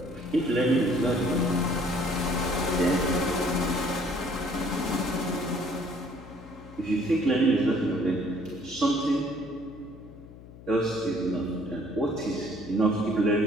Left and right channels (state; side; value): noise; left; hum, 18 dB below the sound